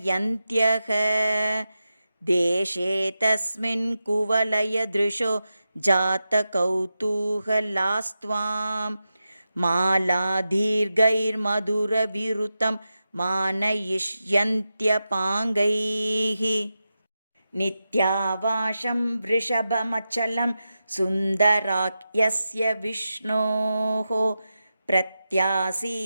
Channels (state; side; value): inverted; both; correlation -0.91